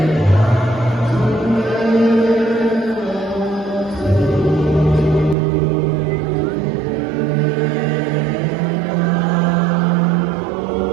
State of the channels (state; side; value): drops out; left; at 5.4 s